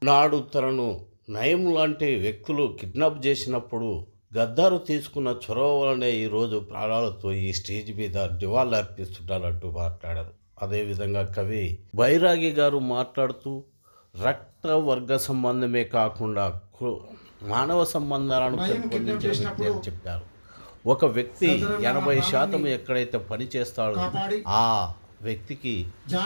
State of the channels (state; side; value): inverted; both; correlation -1.00